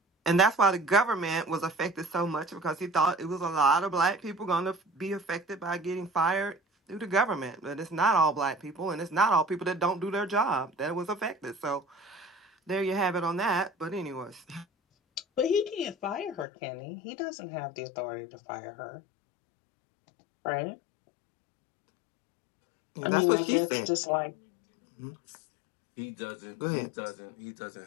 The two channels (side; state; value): right; drops out; at 16.4 s